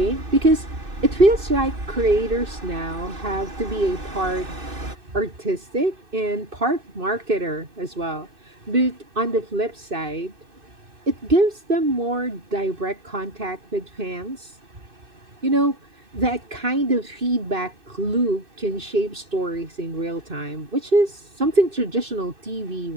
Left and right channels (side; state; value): left; late; 2.6 ms